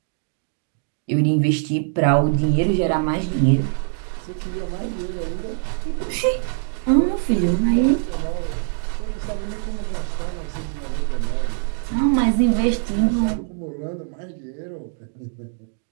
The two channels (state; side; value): silent; left; digital silence